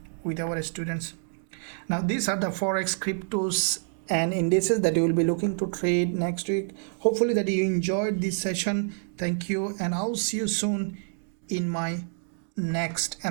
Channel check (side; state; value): left; silent; digital silence